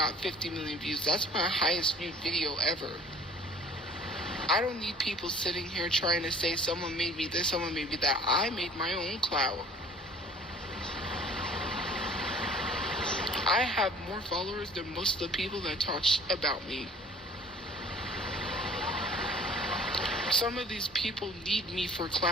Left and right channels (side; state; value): both; normal; correlation 0.51